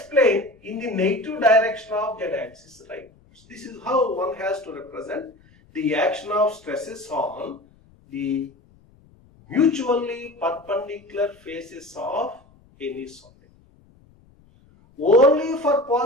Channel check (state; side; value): noise; left; rumble, 29 dB below the sound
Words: plane in the negative direction of z-axis rightwards. This is how one has to represent the action of stresses on the mutually perpendicular faces of any solid. Only for